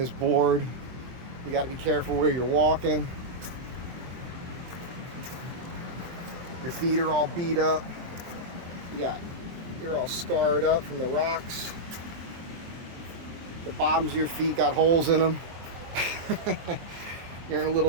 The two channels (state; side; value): late; left; 23 ms